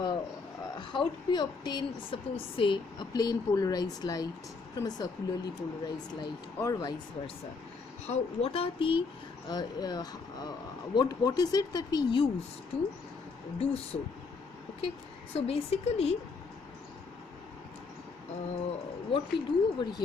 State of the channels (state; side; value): quieter; right; 4.4 dB